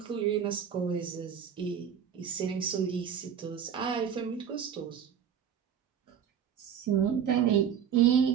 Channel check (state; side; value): quieter; left; 8.4 dB